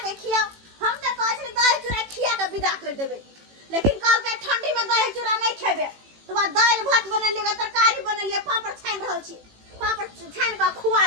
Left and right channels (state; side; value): late; left; 18 ms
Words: के खियाओ हम त कहै छी दही चूड़ा खिया के विदा कर देबै लेकिन कल के ठंडी में दही चूड़ा नहीं खेबे तो बाद दाल भात बनलिए तरकारी बनलिए पापड़ छान रहल छी पापड़ छान के खुआ